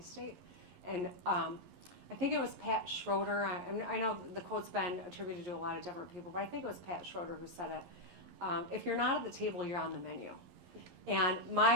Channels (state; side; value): late; left; 11 ms